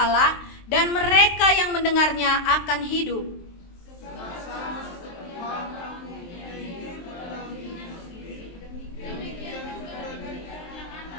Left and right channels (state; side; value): late; right; 23 ms